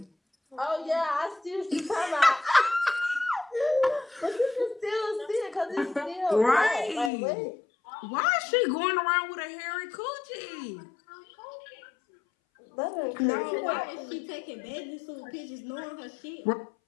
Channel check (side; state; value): right; drops out; at 7.1 s